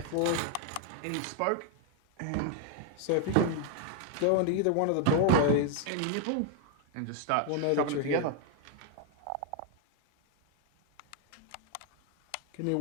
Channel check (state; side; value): different; both; correlation 0.00